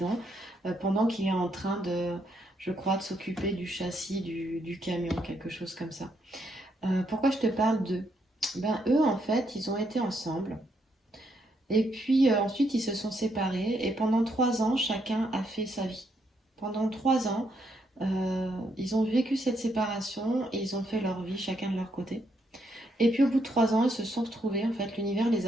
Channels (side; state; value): both; normal; correlation 0.76